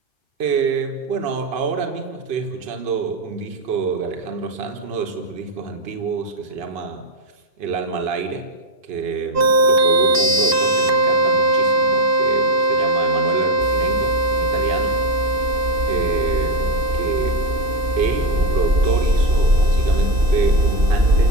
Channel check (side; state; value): left; late; 2.5 ms